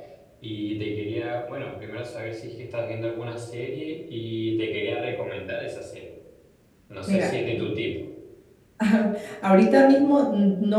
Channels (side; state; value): both; identical; correlation 1.00